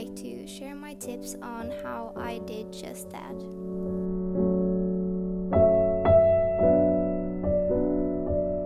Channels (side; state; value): both; identical; correlation 1.00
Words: to share my tips on how I did just that.